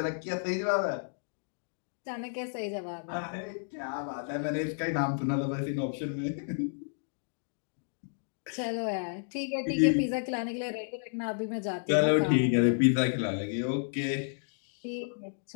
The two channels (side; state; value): right; silent; digital silence